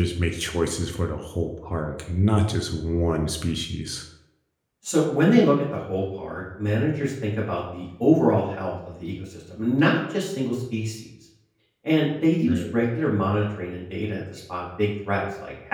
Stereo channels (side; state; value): both; identical; correlation 1.00